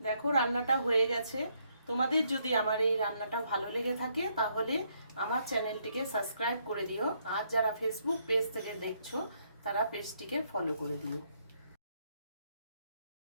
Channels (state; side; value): inverted; both; correlation -0.73